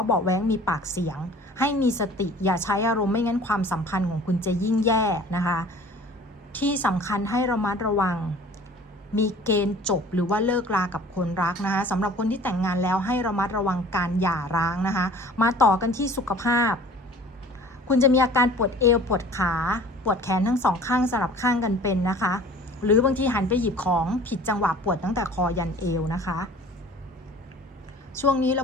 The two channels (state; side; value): normal; both; correlation 0.47